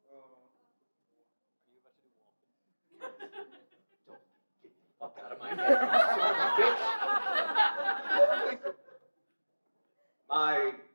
Fuck out of my head. My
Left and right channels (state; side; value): inverted; both; correlation -1.00